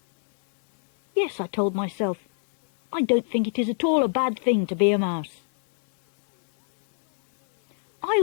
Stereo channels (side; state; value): right; silent; digital silence